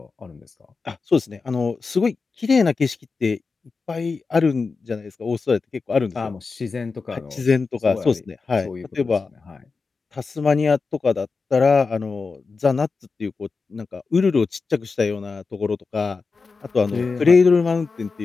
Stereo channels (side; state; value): right; quieter; 4.5 dB